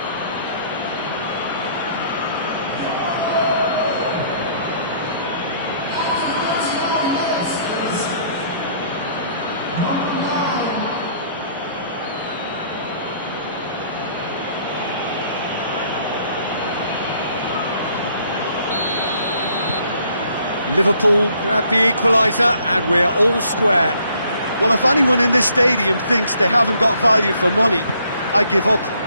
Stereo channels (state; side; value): inverted; both; correlation -0.63